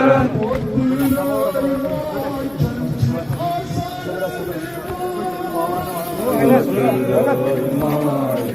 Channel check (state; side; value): noise; left; rumble, 28 dB below the sound